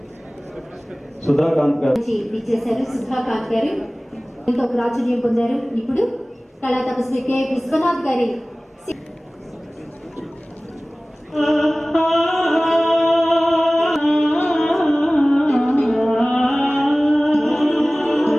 సుధాకాంత్ గారు విచ్చేశారు. సుధాకాంత్ గారు ఎంతో ప్రాచుర్యం పొందారు. ఇప్పుడు కళా తపస్వి కె విశ్వనాథ్ గారి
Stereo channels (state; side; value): normal; both; correlation 0.98